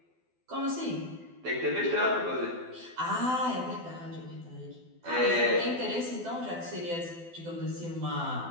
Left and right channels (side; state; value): left; late; 12 ms